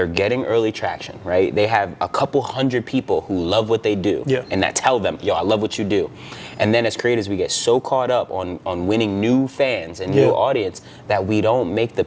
getting early traction, right? They have a couple hundred people who love what they do and that tell them, yo, I love what you do. And then as creators, we get so caught up on winning new fans and new audience that we don't make the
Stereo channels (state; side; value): identical; both; correlation 1.00